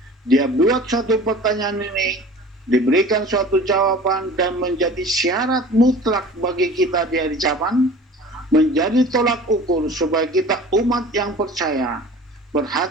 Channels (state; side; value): normal; both; correlation 0.42